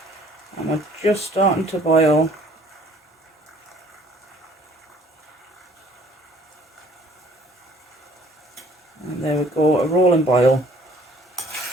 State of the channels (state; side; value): normal; both; correlation 0.57